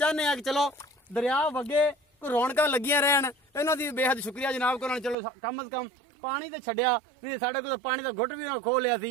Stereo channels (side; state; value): left; drops out; at 5.2 s